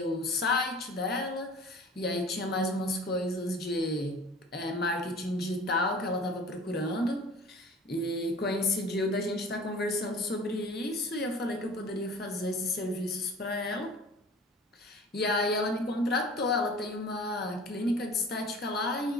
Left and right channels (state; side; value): normal; both; correlation 0.43